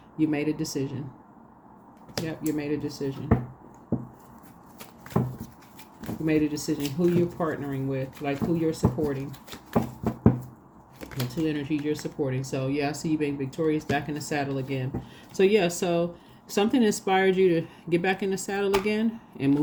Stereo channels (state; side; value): identical; both; correlation 1.00